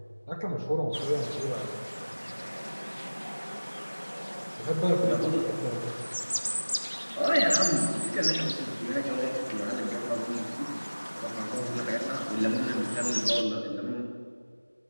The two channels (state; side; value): inverted; both; correlation -1.00